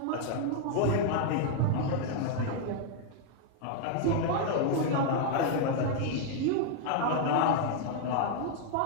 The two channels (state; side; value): different; both; correlation 0.00